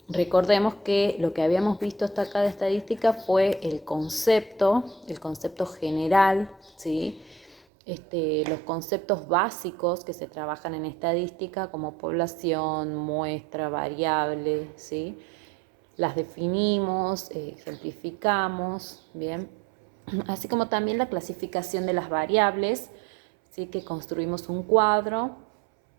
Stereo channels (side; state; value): left; drops out; at 7.6 s